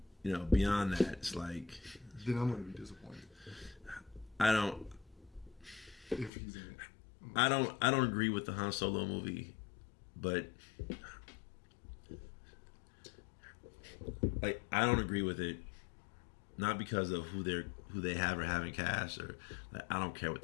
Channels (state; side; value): drops out; right; at 6.3 s